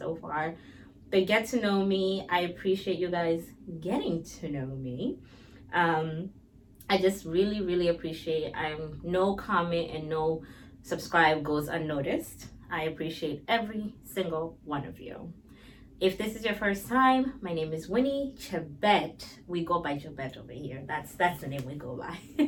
far. The get to know me, I appreciate you guys getting to know me. Um, I just really appreciate. No comment and no subscribe goes unnoticed. I appreciate every single one of you. If this is your first time, my name is Winnie Chebet. We go by Chebet over here. That's the name we go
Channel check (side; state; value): both; identical; correlation 1.00